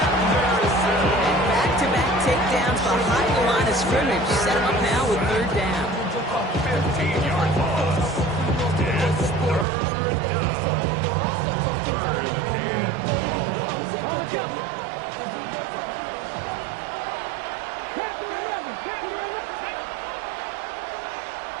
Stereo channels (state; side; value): drops out; left; at 9.7 s